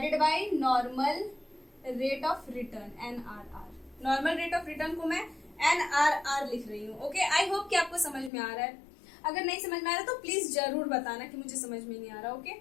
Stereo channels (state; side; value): drops out; right; at 8.3 s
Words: by normal rate of return, NRR। Normal rate of return को मैं NRR लिख रही हूँ, ओके। आई होप कि आपको समझ में आ रहा है। अगर नहीं समझ में आ रहा तो प्लीज जरूर बताना कि मुझे समझ में नहीं आ रहा, ओके।